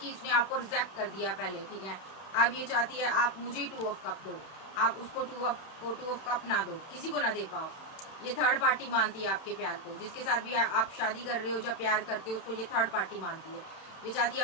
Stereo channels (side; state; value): right; late; 31 ms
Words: इसने आपको रिजेक्ट कर दिया पहले, ठीक है। अब ये चाहती है आप मुझे 2 ऑफ कप दो, आप उसको 2 ऑफ कप ना दो, किसी को ना दे पाओ। ये थर्ड पार्टी मानती है आपके प्यार को, जिसके साथ भी आप शादी कर रहे हो, जब प्यार करते हो, उसको ये थर्ड पार्टी मानती है। ये चाहती है